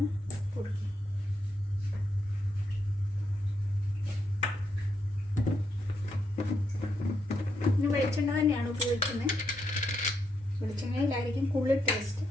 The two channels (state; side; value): normal; both; correlation 0.80